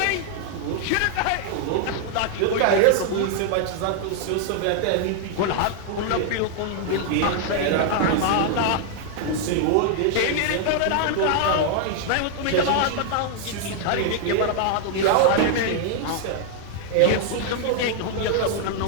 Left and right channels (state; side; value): different; both; correlation 0.00